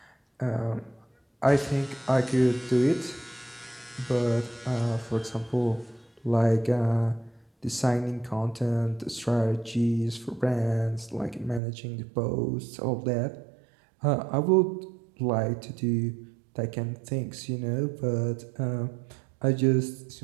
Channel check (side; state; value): left; drops out; at 11.6 s